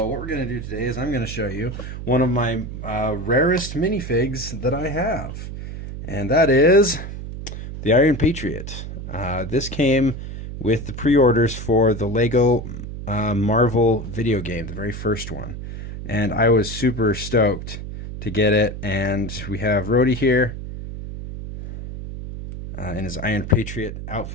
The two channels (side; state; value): right; noise; hum, 8 dB below the sound